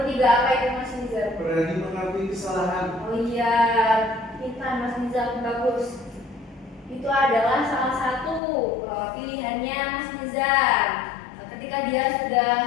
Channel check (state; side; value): drops out; right; at 8.4 s